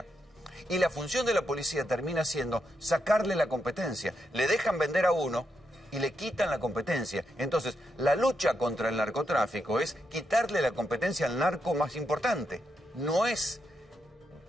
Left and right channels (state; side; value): normal; both; correlation 0.82